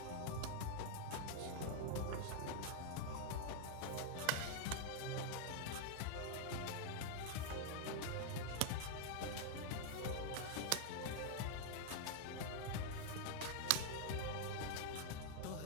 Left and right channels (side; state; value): both; different; correlation 0.00